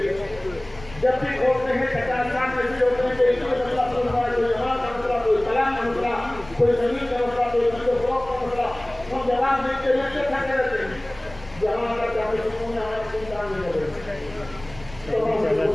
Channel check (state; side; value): noise; left; rumble, 20 dB below the sound